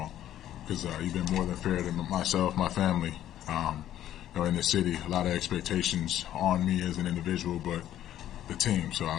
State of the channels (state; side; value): quieter; right; 12.0 dB